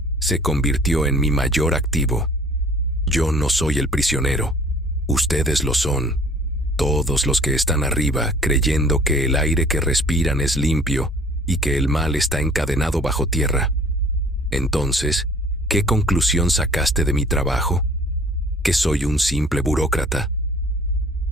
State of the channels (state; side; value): normal; both; correlation 0.52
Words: se convirtió en mi mayor activo. Yo no soy el prisionero. Ustedes lo son. Todos los que están arriba creyendo que el aire que respiran es limpio y que el mal está encadenado bajo tierra. Entonces, ¿qué conclusión sacaste de mi trabajo? ¿Que soy un simple burócrata?